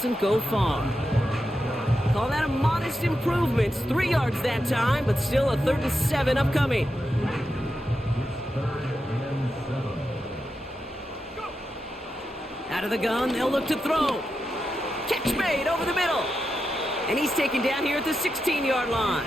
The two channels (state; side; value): normal; both; correlation 0.88